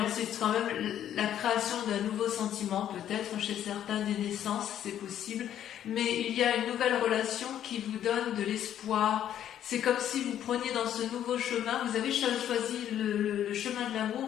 C'est quand même la création d'un nouveau sentiment, peut-être chez certains des naissances, c'est possible. Mais il y a une nouvelle relation qui vous donne de l'espoir. C'est comme si vous preniez dans ce nouveau chemin, vous avez choisi le chemin de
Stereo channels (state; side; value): quieter; right; 10.7 dB